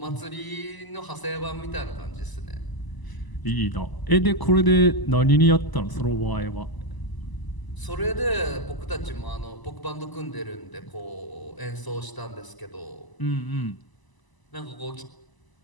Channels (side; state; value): right; late; 1.0 ms